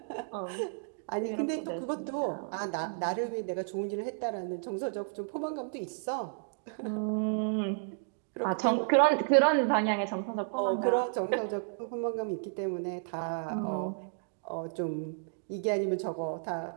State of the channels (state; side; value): silent; left; digital silence